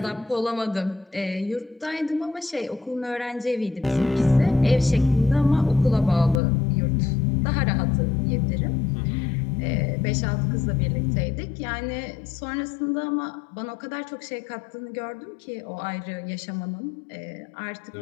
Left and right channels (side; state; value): right; drops out; at 6.4 s